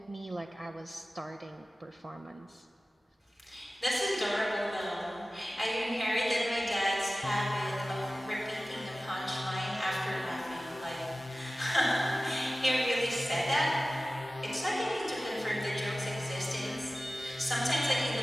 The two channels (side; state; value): both; normal; correlation 0.96